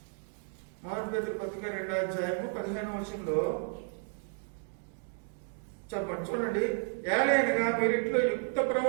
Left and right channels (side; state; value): left; silent; 56 dB below the other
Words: 1 పేతురు పత్రిక 2వ అధ్యాయము 15వ వచనంలో చెప్పండి, చూడండి. ఏలైనగా మీరింట్లో యుక్త